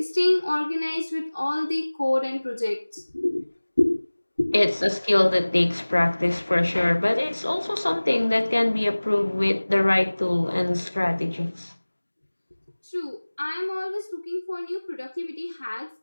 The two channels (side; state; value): both; inverted; correlation -1.00